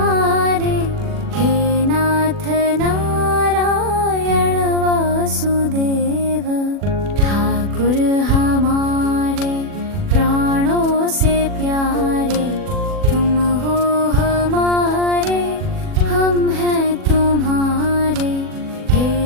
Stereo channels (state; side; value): late; left; 40 ms